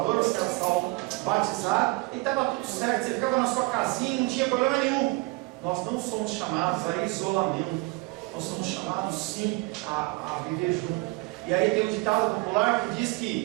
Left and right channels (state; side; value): quieter; left; 25.3 dB